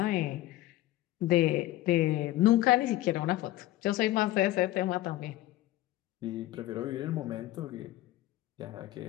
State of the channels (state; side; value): quieter; right; 16.0 dB